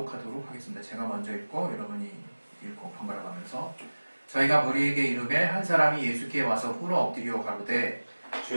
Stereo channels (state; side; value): inverted; both; correlation -1.00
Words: 하겠습니다. 제가 먼저 읽고 여러분이 읽고 번갈아 가면서 저희가 무리에게 이르매 한 사람이 예수께 와서 꿇어 엎드려 가로되